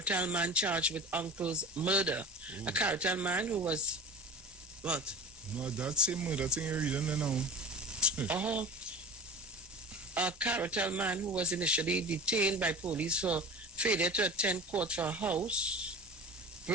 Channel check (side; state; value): both; normal; correlation 0.33